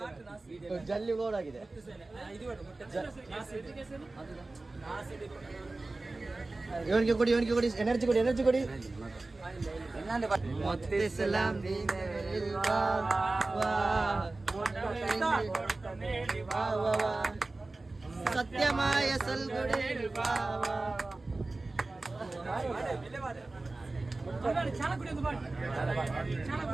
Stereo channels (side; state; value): left; quieter; 3.2 dB